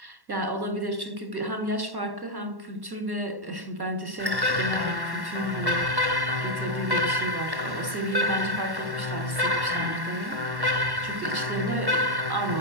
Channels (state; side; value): late; left; 1.1 ms